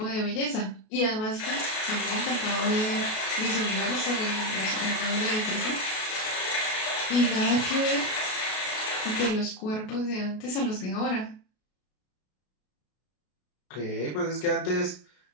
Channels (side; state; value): right; late; 33 ms